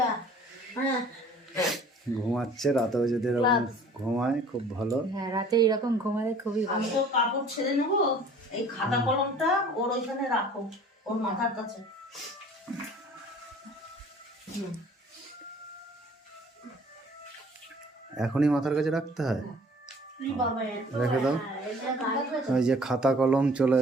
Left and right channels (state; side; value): normal; both; correlation 0.50